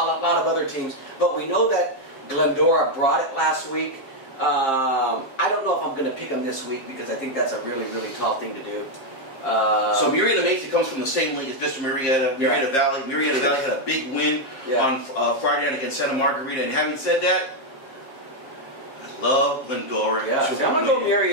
of other teams, but we know that Glendora brought it last week. I don't know if I'm going to pick them this week, because I think that's a really, really tall thing to do. So Murrieta Mesa comes from the same league as Vista Murrieta, Murrieta Valley. Murrieta Valley had a big win on Friday night against Santa Margarita, and having said that, love Glendora. Yeah, I'm going to go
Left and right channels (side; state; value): right; late; 7.5 ms